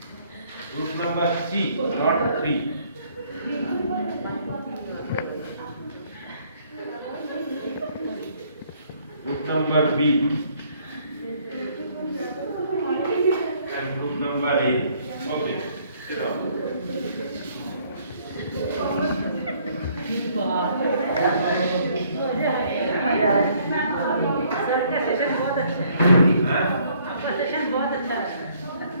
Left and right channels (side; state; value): both; inverted; correlation -0.64